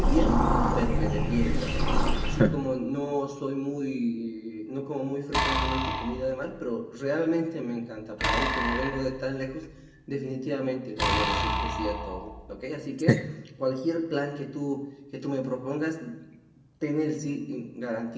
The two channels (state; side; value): identical; both; correlation 1.00